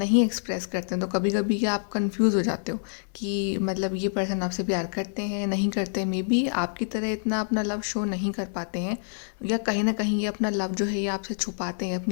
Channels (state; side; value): silent; right; digital silence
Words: एक्सप्रेस करते हैं। तो कभी कभी क्या आप कंफ्यूज हो जाते हो कि मतलब ये पर्सन आपसे प्यार करते हैं नहीं करते, मे बी आपकी तरह इतना अपना लव शो नहीं कर पाते हैं, या कहीं ना कहीं ये अपना लव जो है ये आपसे छुपाते हैं,